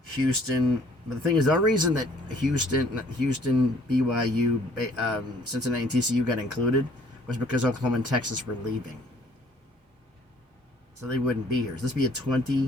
Houston But the thing is, the reason that Houston, BYU, Cincinnati, and TCU got included was because Oklahoma and Texas were leaving. So they wouldn't be here. So this would be a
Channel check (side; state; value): both; normal; correlation 0.58